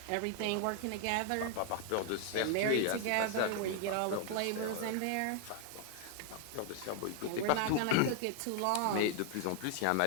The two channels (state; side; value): different; both; correlation 0.00